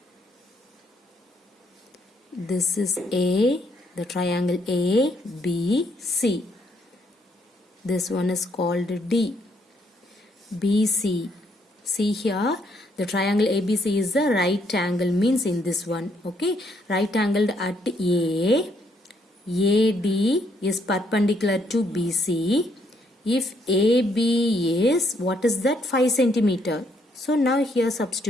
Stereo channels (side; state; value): both; normal; correlation 0.72